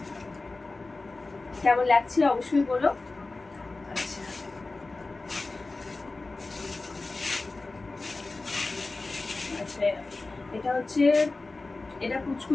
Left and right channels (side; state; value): right; quieter; 3.4 dB